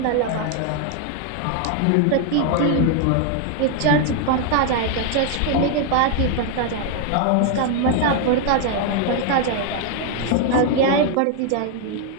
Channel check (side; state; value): both; different; correlation 0.00